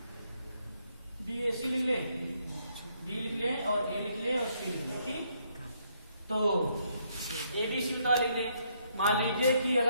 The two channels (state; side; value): inverted; both; correlation -0.73